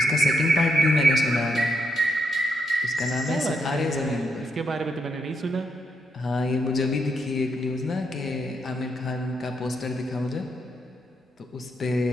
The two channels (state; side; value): normal; both; correlation 0.79